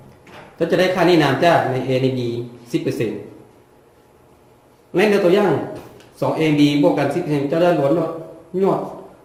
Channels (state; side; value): identical; both; correlation 1.00